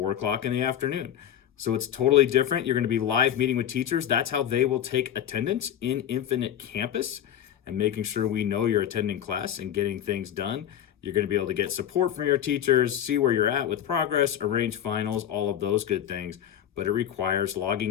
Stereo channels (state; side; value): quieter; right; 10.2 dB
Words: o'clock in the afternoon. So it's totally different. You're going to be live meeting with teachers. That's how they will take attendance in Infinite Campus, and making sure we know you're attending class and getting things done. You're going to be able to get support from your teachers, see where you're at with progress, arrange finals, all of those good things. But it requires